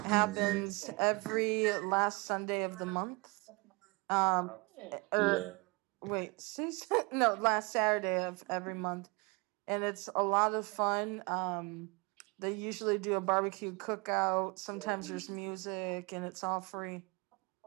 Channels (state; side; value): quieter; left; 28.2 dB